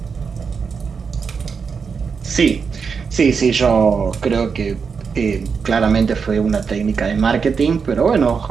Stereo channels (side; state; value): left; quieter; 5.7 dB